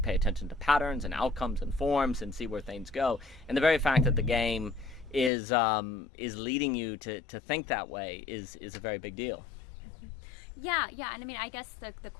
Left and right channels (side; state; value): right; drops out; at 5.3 s